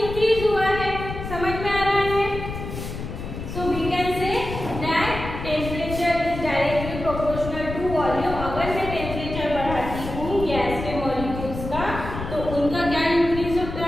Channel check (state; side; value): noise; left; rumble, 7 dB below the sound